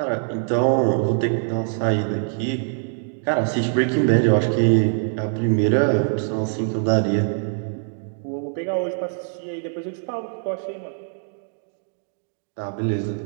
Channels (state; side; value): silent; left; digital silence